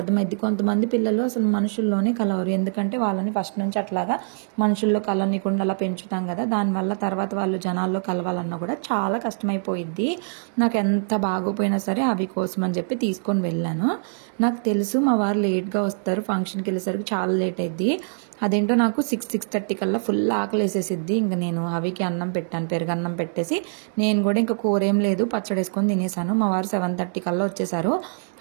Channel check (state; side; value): silent; left; digital silence